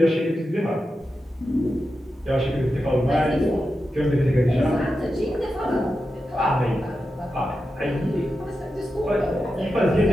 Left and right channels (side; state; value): both; normal; correlation 0.90